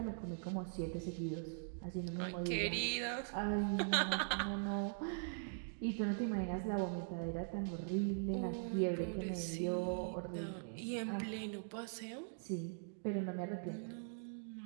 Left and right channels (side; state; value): left; silent; digital silence